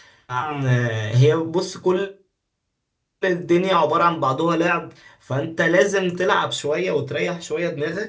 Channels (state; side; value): identical; both; correlation 1.00